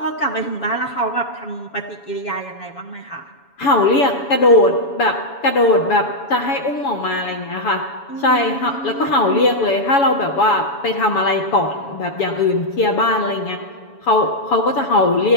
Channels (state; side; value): late; right; 7.1 ms